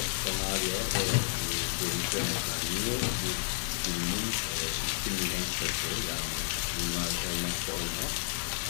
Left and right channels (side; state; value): right; silent; digital silence